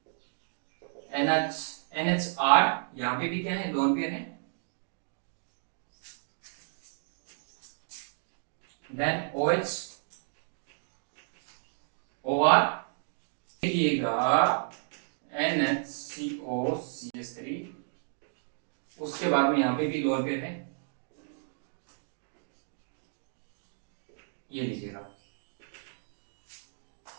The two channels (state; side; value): silent; left; digital silence